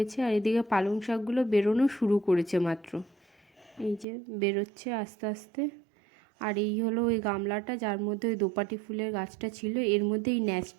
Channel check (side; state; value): left; drops out; at 4.0 s